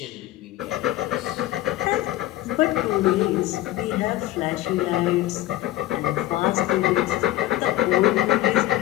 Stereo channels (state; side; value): quieter; right; 15.5 dB